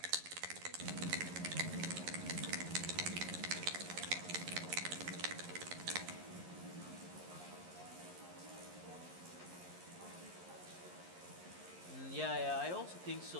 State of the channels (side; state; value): left; late; 11 ms